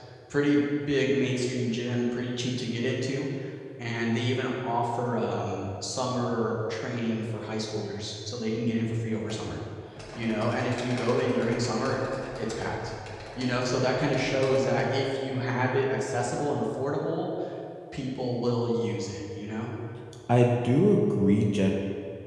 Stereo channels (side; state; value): both; identical; correlation 1.00